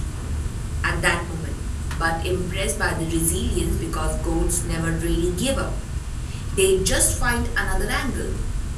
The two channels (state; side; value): identical; both; correlation 1.00